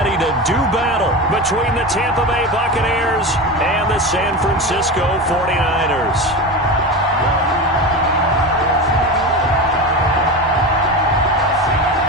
to do battle between the Tampa Bay Buccaneers and the San Francisco 49ers.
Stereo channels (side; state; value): both; normal; correlation 0.24